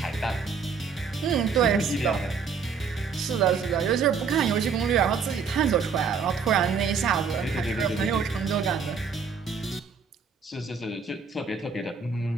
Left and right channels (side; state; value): left; quieter; 5.7 dB